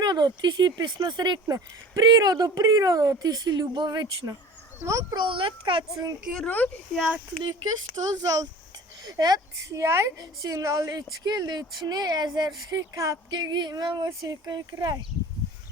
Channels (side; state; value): both; normal; correlation 0.40